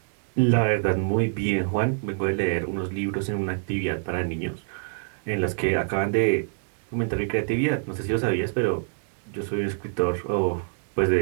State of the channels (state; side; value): silent; left; digital silence